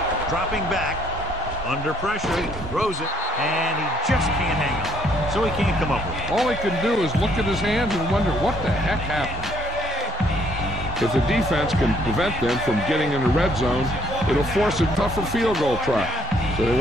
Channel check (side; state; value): both; normal; correlation 0.69